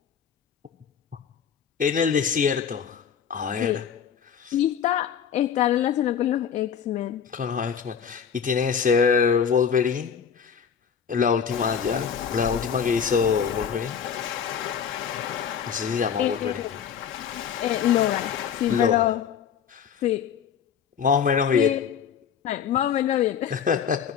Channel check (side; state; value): right; quieter; 7.5 dB